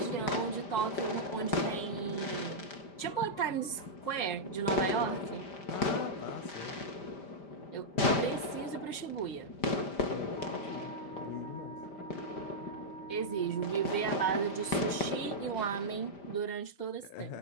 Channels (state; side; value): late; right; 5.0 ms